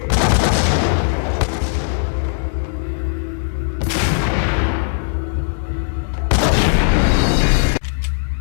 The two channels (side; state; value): right; silent; digital silence